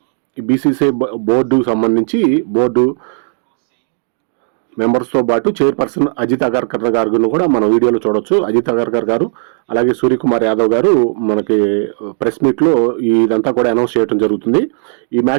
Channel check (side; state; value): left; silent; digital silence